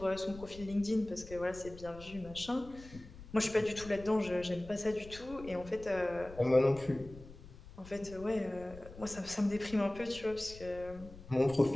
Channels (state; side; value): noise; left; rumble, 16 dB below the sound